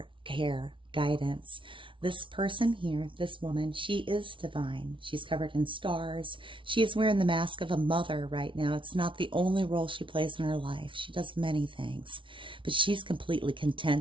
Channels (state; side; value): late; left; 0.25 ms